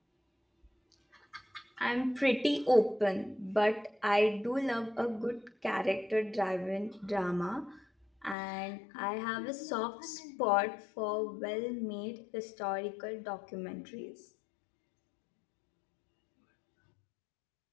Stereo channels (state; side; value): drops out; right; at 8.3 s